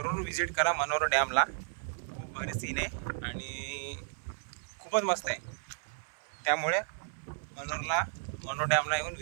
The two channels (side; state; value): left; silent; 56 dB below the other